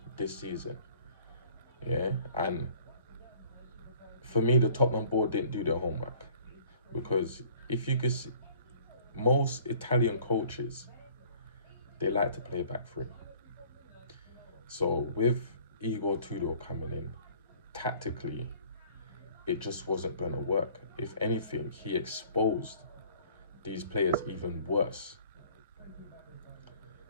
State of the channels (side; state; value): both; inverted; correlation -0.53